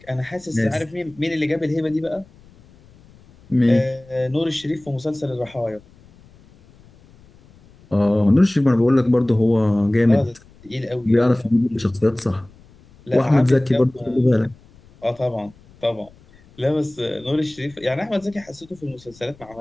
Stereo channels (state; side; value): noise; left; rumble, 27 dB below the sound